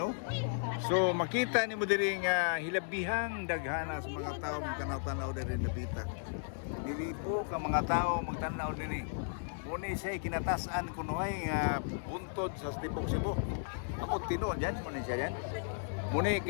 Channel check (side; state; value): right; silent; digital silence